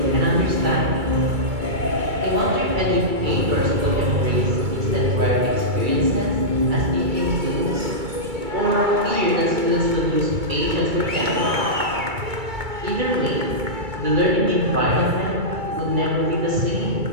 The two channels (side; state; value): left; late; 2.2 ms